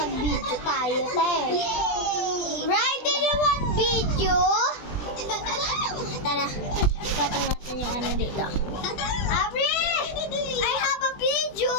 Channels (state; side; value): late; right; 20 ms